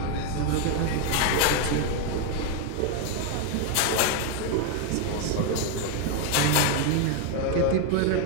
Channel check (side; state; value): both; different; correlation 0.01